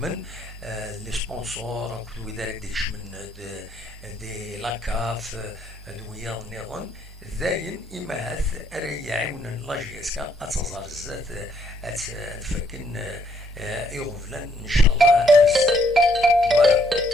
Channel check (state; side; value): normal; both; correlation 0.69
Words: لي سبونسور كل ذلك يشمل دي لاكاف دويا نيرون ذاين إما هاث يعاون لا جي اس كا أتصدر الزات تفكن يغفلن إن شاء الله فوالا